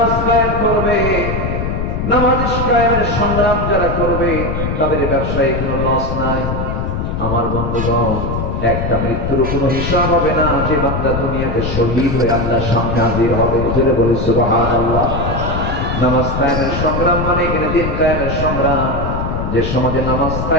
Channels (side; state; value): left; noise; rumble, 2 dB below the sound